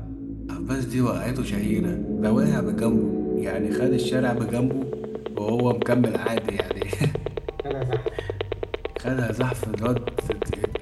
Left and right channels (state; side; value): identical; both; correlation 1.00